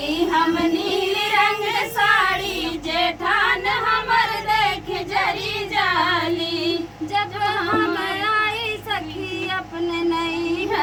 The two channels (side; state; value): both; identical; correlation 1.00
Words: हम नील रंग साड़ी जेठान हमर देख जरी जाली। जब हम आई सखी अपने